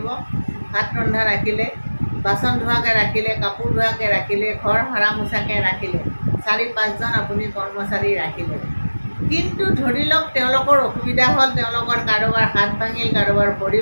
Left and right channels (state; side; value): inverted; both; correlation -1.00